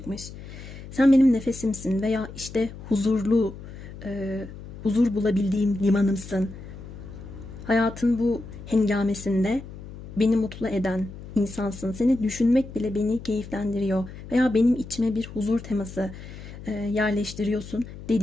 Sen benim nefesimsin veya işte huzurlu, huzur bulabildiğim limanımsın. Hayatın bu hengamesinde beni mutlu eden insansın. Seni düşünmek bile beni keyiflendiriyor. Veya benim içime bir huzur teması yerleştiriyorsun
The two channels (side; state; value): left; noise; hum, 14 dB below the sound